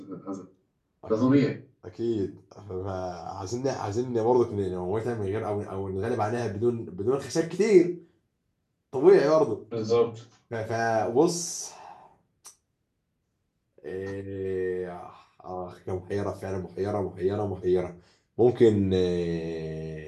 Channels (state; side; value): identical; both; correlation 1.00